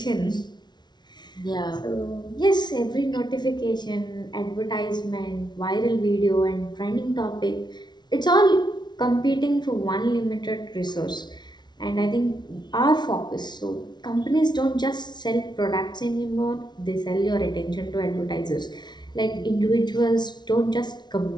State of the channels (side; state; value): right; late; 0.20 ms